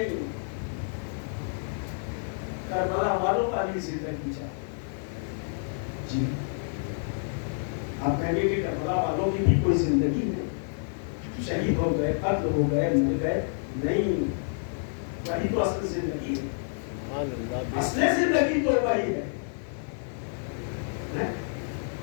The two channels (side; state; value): right; silent; 59 dB below the other